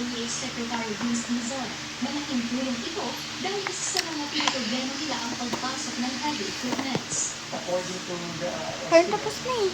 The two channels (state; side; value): identical; both; correlation 1.00